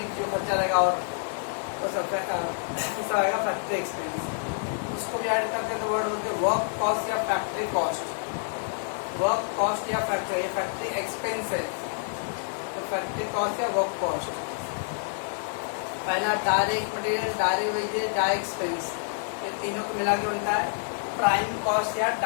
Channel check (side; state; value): right; silent; digital silence